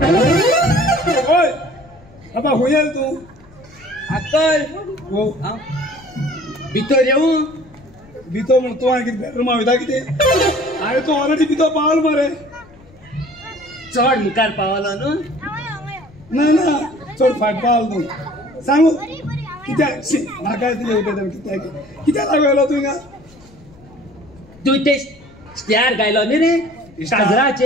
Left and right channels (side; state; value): left; noise; rumble, 25 dB below the sound